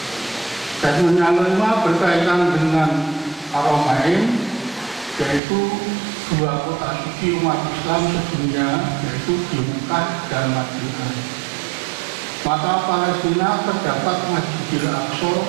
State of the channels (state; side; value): drops out; left; at 5.4 s